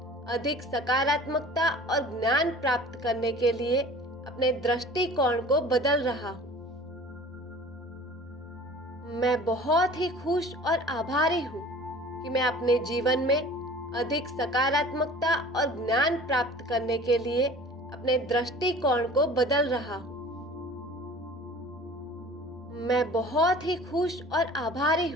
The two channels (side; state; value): both; normal; correlation 0.44